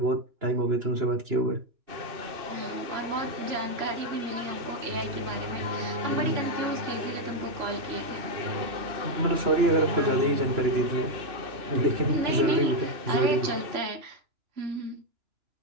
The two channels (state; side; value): late; left; 2.9 ms